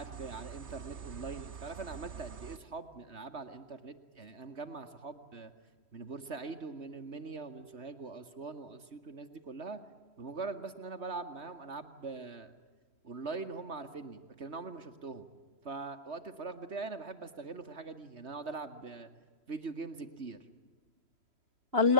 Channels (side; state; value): left; late; 3.2 ms